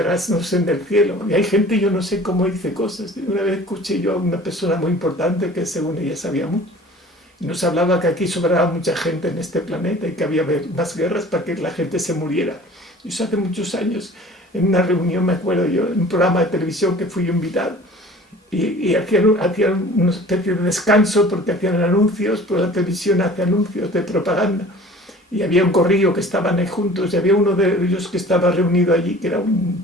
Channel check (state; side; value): normal; both; correlation 0.46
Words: no son del cielo. Y hay gente, yo no sé cómo dice cosas. Una vez escuché yo a una persona muy importante que según ella sabía mucho. Y nos hablaba que aquí sobraba mucha gente en este planeta y que había más guerras para que la gente se muriera. Y eso hace muchos años, en una reunión, me acuerdo yo, en un programa de televisión que fui invitado. Y hacían una especie de descanso porque hacían anuncios, pues la televisión hace anuncios de propaganda. Y había un corrillo que estaban ahí juntos, y había uno de ellos que estaba reunido allí, que era